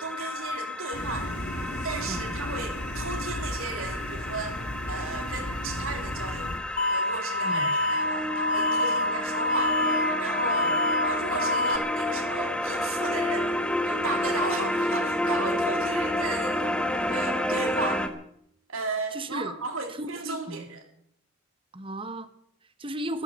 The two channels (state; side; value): normal; both; correlation 0.16